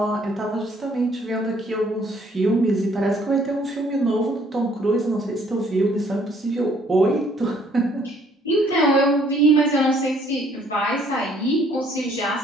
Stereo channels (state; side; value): normal; both; correlation 0.62